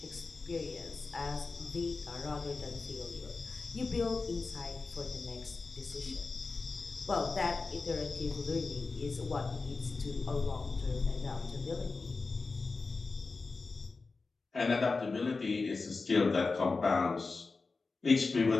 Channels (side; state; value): right; quieter; 4.0 dB